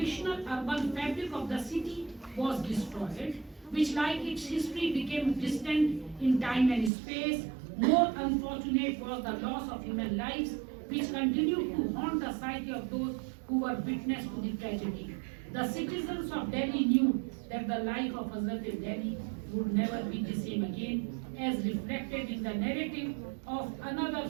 urban fabric of the city was destroyed, which, like its history, became distant in time and space. More unfortunate was the loss of human lives, which continued to haunt the psyche of those who were witness to the tragedy. The citizens of Delhi knew that the life of Hazrat-i-Dehli would never be the same again, as reflected in the narrative of another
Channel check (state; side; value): drops out; left; at 6.9 s